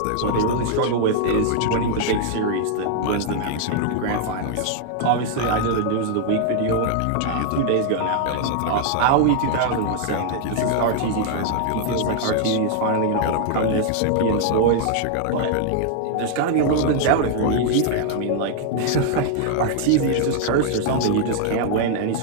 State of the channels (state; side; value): different; both; correlation 0.00